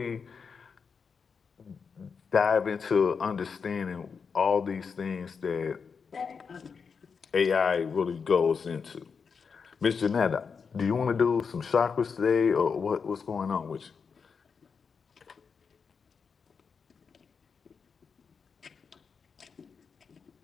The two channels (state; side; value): quieter; right; 5.7 dB